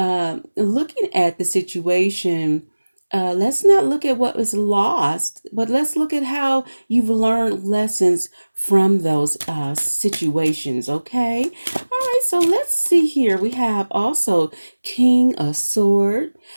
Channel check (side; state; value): both; inverted; correlation -1.00